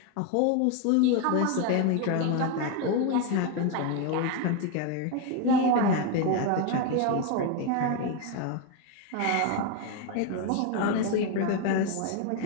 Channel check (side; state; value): both; different; correlation 0.02